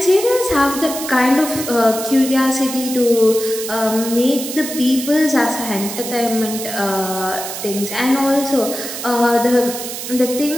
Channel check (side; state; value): right; noise; hiss, 7 dB below the sound